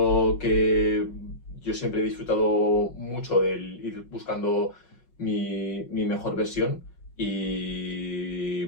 que yo siempre he disfrutado mucho del ir buscando mi mejor versión y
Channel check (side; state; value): right; late; 5.5 ms